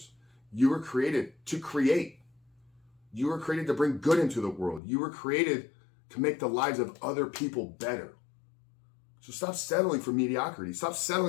You were created to create. You were created to bring good into the world. You were created to make the lives of other people better. So stop settling for mediocrity. Stop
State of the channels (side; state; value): right; drops out; at 4.8 s